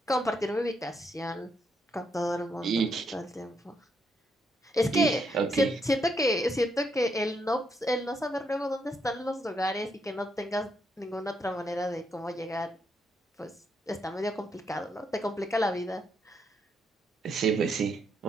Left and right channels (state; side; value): normal; both; correlation 0.77